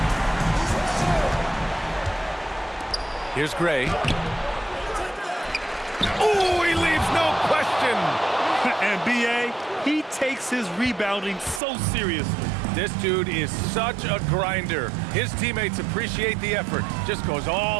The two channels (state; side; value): drops out; left; at 11.6 s